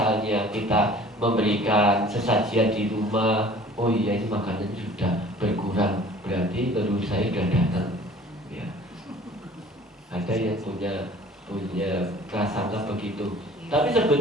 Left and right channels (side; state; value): both; normal; correlation 0.48